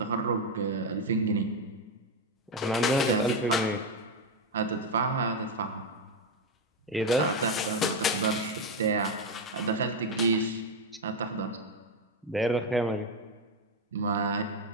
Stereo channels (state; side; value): normal; both; correlation 0.07